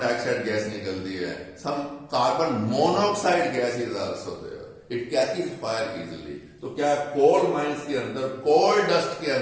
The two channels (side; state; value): both; identical; correlation 1.00